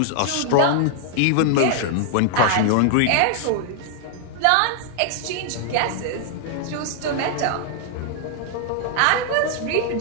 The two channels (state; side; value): different; both; correlation 0.00